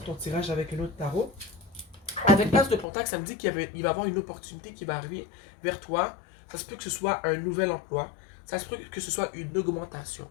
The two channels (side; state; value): right; drops out; at 2.9 s